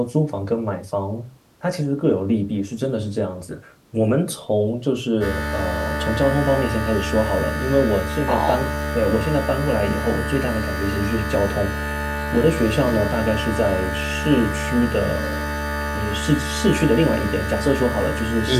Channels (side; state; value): both; identical; correlation 1.00